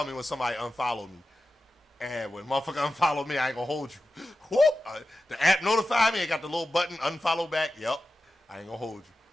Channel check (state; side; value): normal; both; correlation 0.92